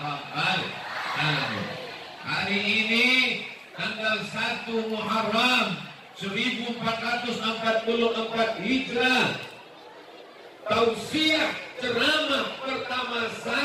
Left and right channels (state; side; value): identical; both; correlation 1.00